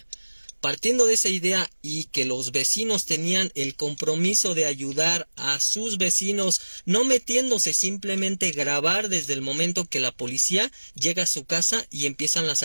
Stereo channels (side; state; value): both; inverted; correlation -1.00